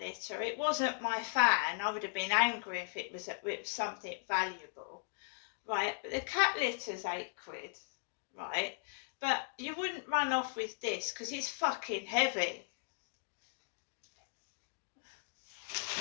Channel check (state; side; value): silent; right; digital silence